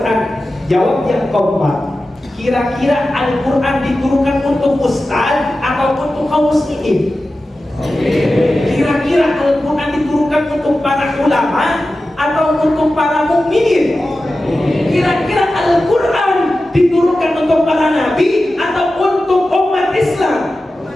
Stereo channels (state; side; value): normal; both; correlation 0.94